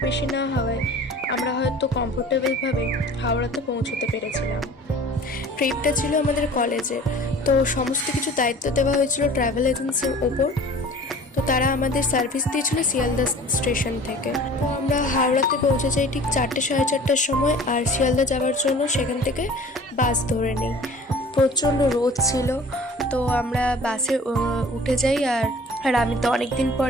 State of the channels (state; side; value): normal; both; correlation 0.45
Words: বেশি না হওয়ায় আমরা হয়তো কমফোর্টেবলভাবে হাওড়াতে পৌঁছতে পেরেছিলাম। ট্রিপটা ছিল আমাদের কলেজের, তো সমস্ত কিছু দায়িত্ব দেওয়া হয়েছিল ট্রাভেল এজেন্সির ওপর। তো তারা আমাদের সার্ভিস দিয়েছিল শিয়ালদা স্টেশন থেকে। তো আমরা হাওড়াতে পৌঁছে যাই ঠিক 4টে সাড়ে 4টার সময়, আর শিয়ালদা যাওয়ার জন্য সেখান থেকে বাস ধরে নিই। প্রচণ্ড রোদ ছিল, তো আমরা বাসে উঠে যাই। আর আমি তো অনেক দিন